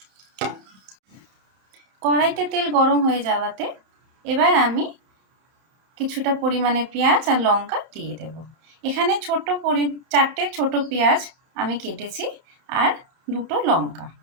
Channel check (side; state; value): left; late; 31 ms